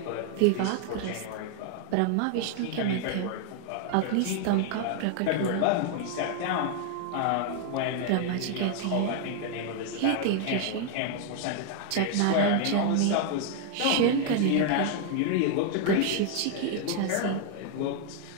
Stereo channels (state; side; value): different; both; correlation 0.00